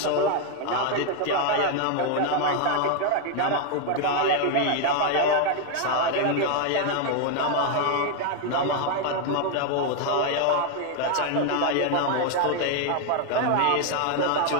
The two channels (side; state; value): both; different; correlation 0.00